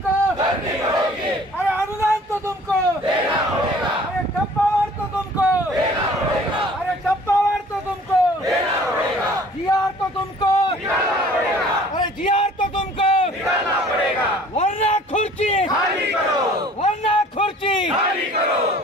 करनी होगी, अरे अनुदान तो तुमको देना होगा, अरे टप्पावार तो तुमको देना होगा, अरे टप्पावार तो तुमको देना होगा, जीआर तो तुमको निकालना पड़ेगा, अरे जीआर तो तुमको निकालना पड़ेगा, वरना खुर्ची खाली करो, वरना खुर्ची खाली करो।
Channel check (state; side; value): normal; both; correlation 0.51